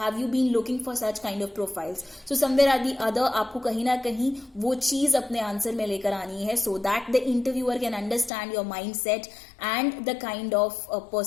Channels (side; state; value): right; drops out; at 8.3 s